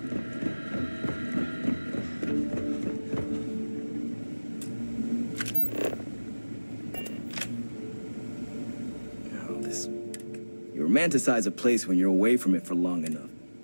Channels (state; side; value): inverted; both; correlation -1.00